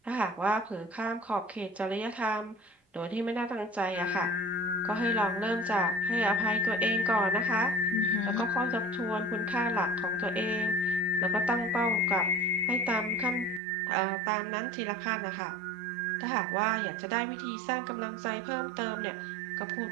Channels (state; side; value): drops out; left; at 13.6 s